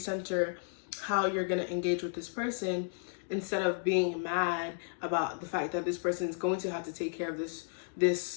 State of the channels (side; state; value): right; silent; digital silence